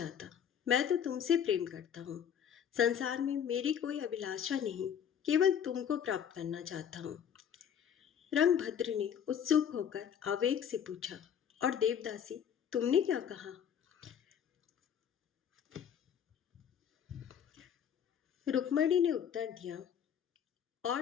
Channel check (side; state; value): right; quieter; 8.5 dB